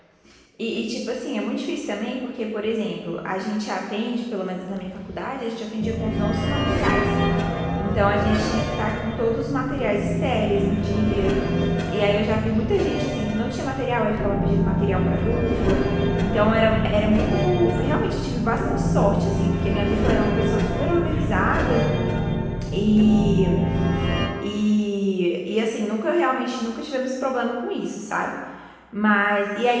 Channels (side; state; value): both; identical; correlation 1.00